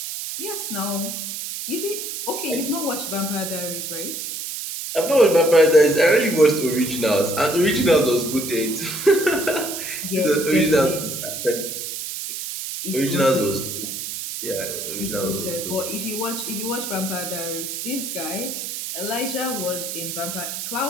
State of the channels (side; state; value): right; noise; hiss, 6 dB below the sound